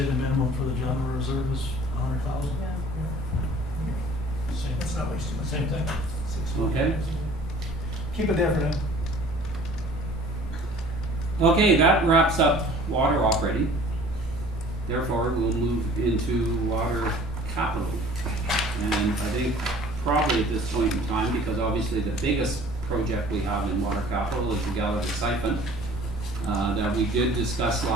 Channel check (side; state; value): both; normal; correlation 0.49